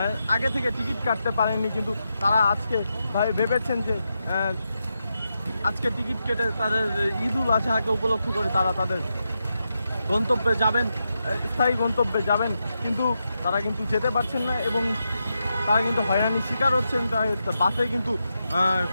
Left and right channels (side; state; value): both; inverted; correlation -0.86